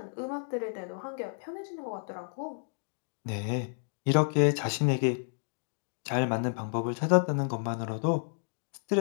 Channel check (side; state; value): right; silent; digital silence